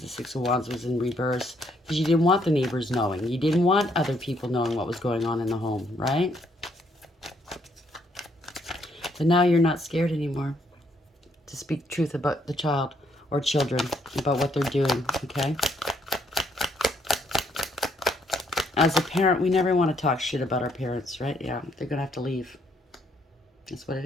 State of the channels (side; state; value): both; normal; correlation 0.71